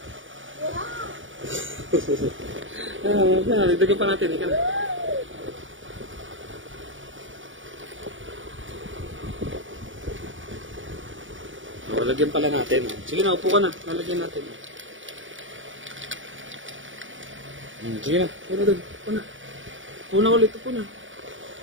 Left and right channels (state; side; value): late; left; 0.56 ms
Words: Nagdagan pa natin. Ika na. Lagyan pala natin. Sige na, upo ka na. Lalagyan natin. Sige na. Upo na doon. Upo na. Upo na ulit. Upo na.